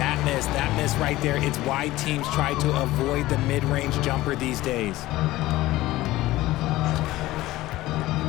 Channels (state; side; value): quieter; right; 17.2 dB